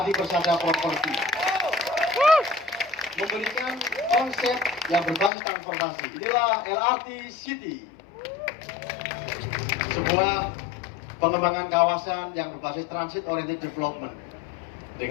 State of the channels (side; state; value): right; drops out; at 5.3 s